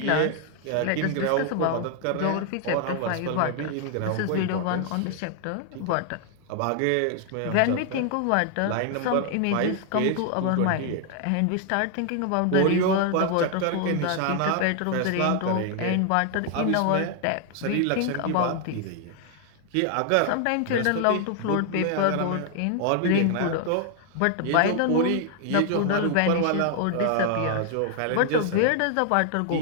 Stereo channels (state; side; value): different; both; correlation 0.00